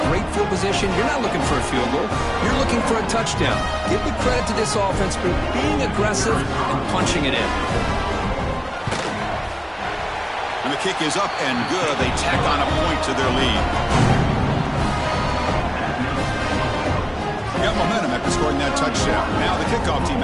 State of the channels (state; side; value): identical; both; correlation 1.00